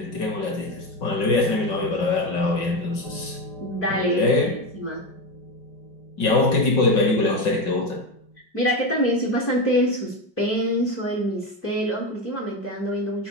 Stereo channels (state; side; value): late; right; 5.4 ms